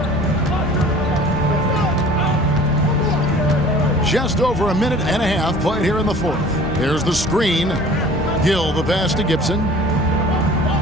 Just over a minute and a half played here in the 4th. There's the screen. Gill the pass to Gibson.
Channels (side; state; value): both; normal; correlation 0.47